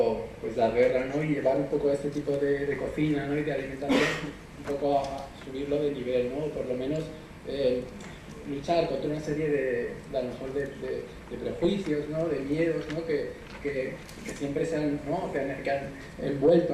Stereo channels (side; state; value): both; identical; correlation 1.00